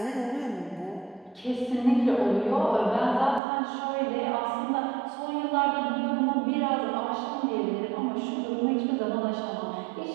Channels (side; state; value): left; drops out; at 3.4 s